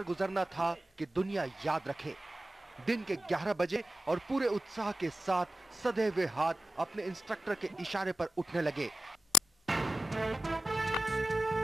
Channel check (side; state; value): both; normal; correlation 0.91